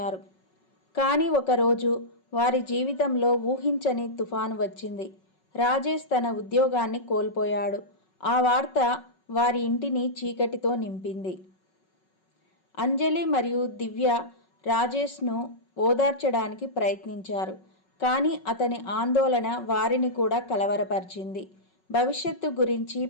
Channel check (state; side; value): late; right; 5.4 ms